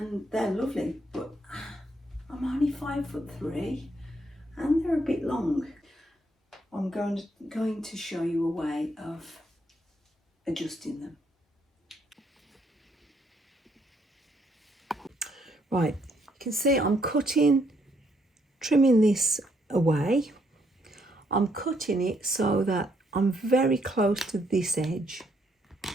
they're lovely, but I'm only 5'3" and they're a bit long. I'm going to show you a way of adjusting them. Right, you can see I'm trimming this away. I'm cutting it so that I'm very close to this edge.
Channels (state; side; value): normal; both; correlation 0.72